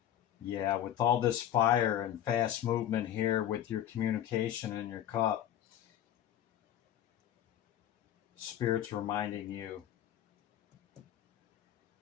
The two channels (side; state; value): right; quieter; 11.1 dB